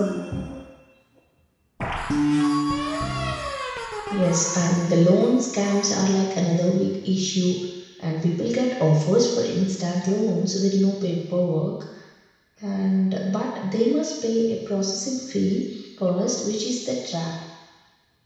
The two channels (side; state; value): both; identical; correlation 1.00